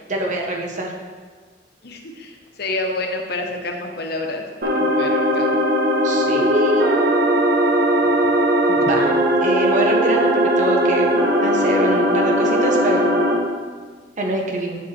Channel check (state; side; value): normal; both; correlation 0.37